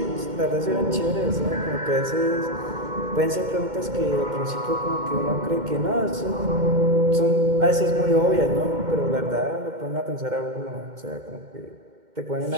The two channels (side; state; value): left; late; 2.1 ms